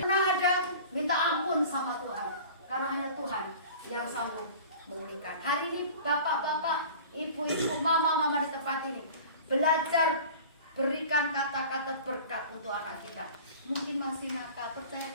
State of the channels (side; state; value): both; inverted; correlation -0.41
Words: ada minta ampun sama Tuhan, karena hanya Tuhan yang sanggup memulihkan. Hari ini bapak-bapak, ibu-ibu, mama di tempat ini belajar berikan kata-kata berkat untuk anak kita. Mungkin masih nakal, percaya